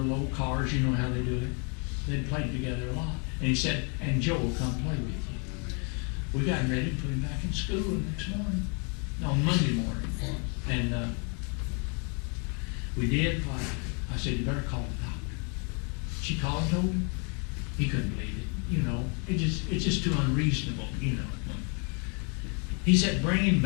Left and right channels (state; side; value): quieter; right; 36.1 dB